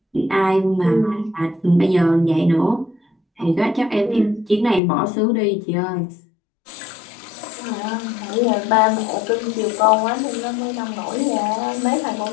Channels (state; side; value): drops out; right; at 4.8 s